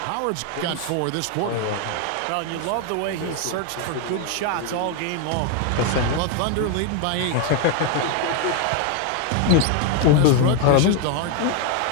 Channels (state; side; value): different; both; correlation 0.01